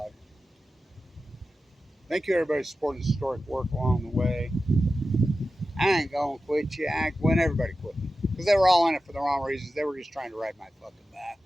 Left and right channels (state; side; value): normal; both; correlation 0.93